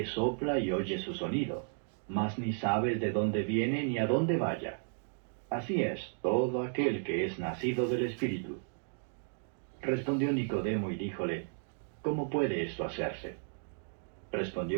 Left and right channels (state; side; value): silent; left; digital silence